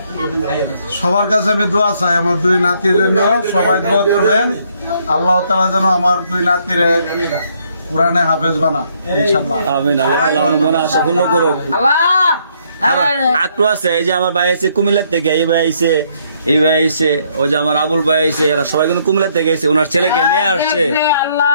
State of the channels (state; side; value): inverted; both; correlation -0.69